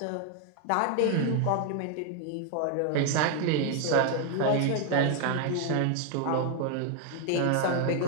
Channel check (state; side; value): different; both; correlation 0.00